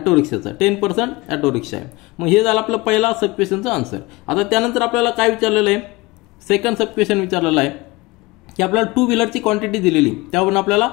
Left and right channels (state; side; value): quieter; right; 22.4 dB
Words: रिक्षाचा 10% ऑटो रिक्षा आहे. मग हे झालं आपलं पहिला सब क्वेश्चनचा आन्सर. आता त्यानंतर आपल्याला काय विचारलेलं आहे सेकंड सब क्वेश्चन विचारलेला आहे की आपल्याला टू व्हीलरची क्वांटिटी दिलेली, त्यावरून आपल्याला